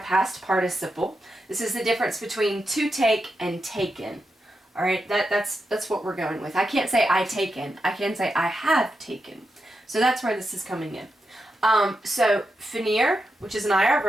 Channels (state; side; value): normal; both; correlation 0.87